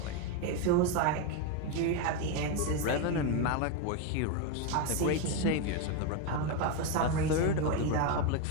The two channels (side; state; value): both; different; correlation 0.02